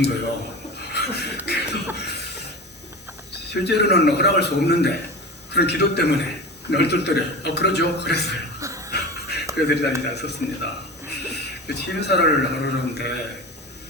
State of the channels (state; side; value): normal; both; correlation 0.30